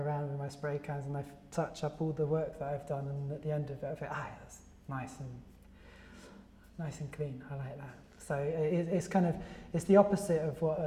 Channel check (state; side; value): identical; both; correlation 1.00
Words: with my spray cans and I touch up all the work that I've done, and at the end of it I think, that's nice and clean. I like that. So it's the opposite of what